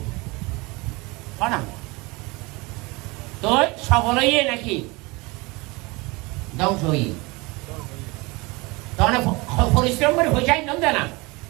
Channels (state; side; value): quieter; left; 25.0 dB